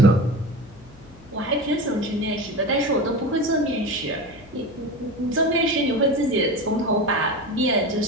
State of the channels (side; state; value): left; noise; hum, 23 dB below the sound